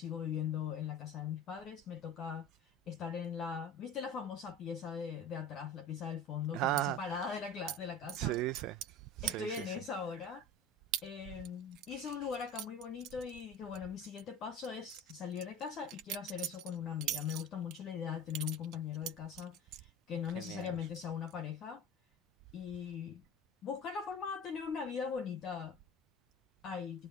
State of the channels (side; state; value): both; normal; correlation 0.35